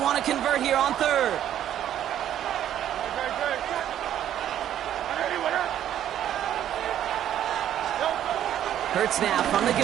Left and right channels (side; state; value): left; quieter; 11.0 dB